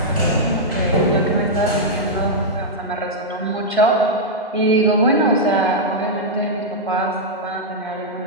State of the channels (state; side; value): normal; both; correlation -0.06